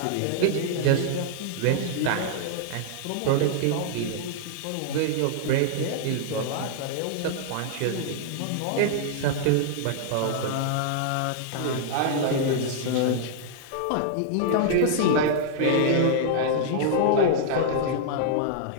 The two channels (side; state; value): both; different; correlation -0.01